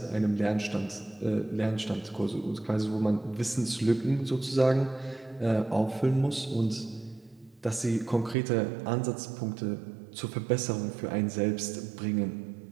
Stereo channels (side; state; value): left; drops out; at 8.3 s